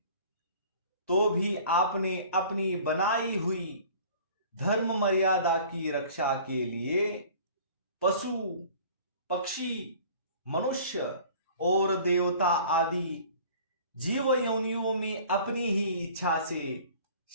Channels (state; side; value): inverted; both; correlation -0.48